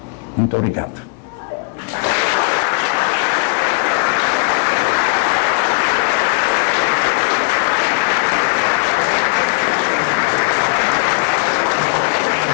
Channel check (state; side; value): quieter; right; 34.4 dB